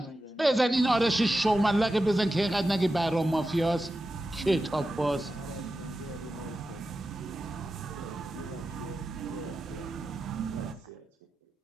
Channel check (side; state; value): both; normal; correlation 0.92